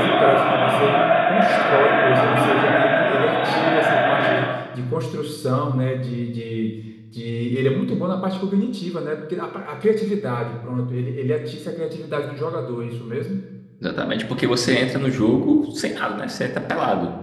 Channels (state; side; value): identical; both; correlation 1.00